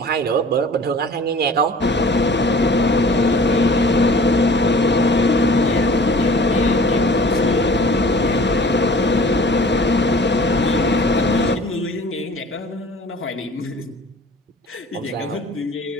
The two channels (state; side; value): normal; both; correlation 0.47